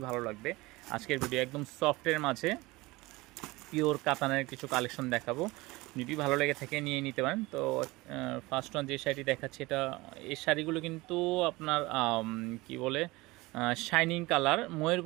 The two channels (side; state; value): left; quieter; 21.5 dB